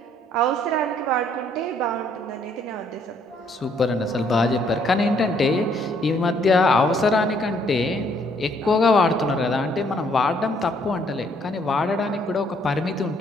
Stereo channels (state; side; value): normal; both; correlation 0.67